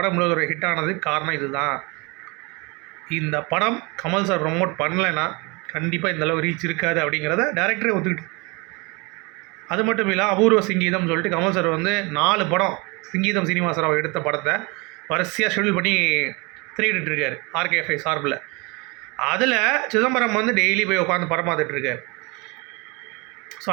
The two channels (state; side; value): quieter; left; 27.7 dB